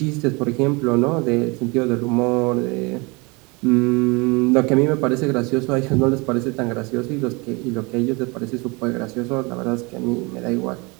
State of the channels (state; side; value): quieter; left; 27.6 dB